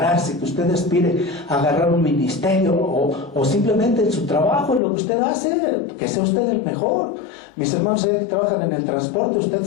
que usted aspire a agarrar un ministerio o simplemente en su trabajo, en lo que usted hace, que sea usted el mejor. Mis hermanos que trabajan en el transporte, usted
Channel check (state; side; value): drops out; right; at 4.8 s